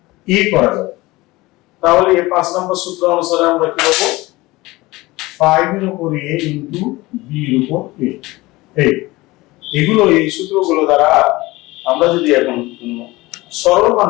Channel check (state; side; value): quieter; right; 20.5 dB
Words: a করা যায়, তাহলে এই 5 নম্বর সূত্র অনুসারে আমরা কি করব, 5 এর উপর a into b এর উপর a। এগুলো এই সূত্রগুলো দ্বারা আমরা যদি এখন সরল মান